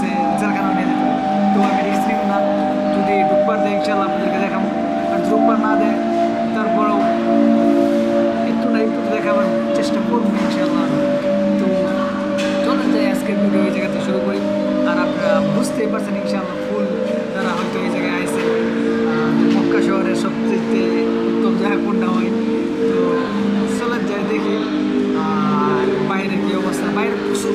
জেলখানা নিয়ে যেতে। তো আমি রিস্ক নিব না, যদি ঢুকবার দেয় ইনশাল্লাহ আপনাদেরকে দেখাবো। আর ঢুকবার না দেয় তারপরেও একটু না একটু দেখাবার চেষ্টা করবো ইনশাল্লাহ। তো চলেন যাই আজকের ভিডিও এই জায়গাতে শুরু করি। আর আপনারা বুঝতেই পারছেন ইনশাআল্লাহ ফুল যারা হয়তো এই জায়গায় আসে মক্কা শহরের সবচেয়ে উত্তম জায়গা কোনটা হয়। তো চলেন যাই দেখি। আর বাইরের কী অবস্থা, বাইরে প্রচুর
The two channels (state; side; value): identical; both; correlation 1.00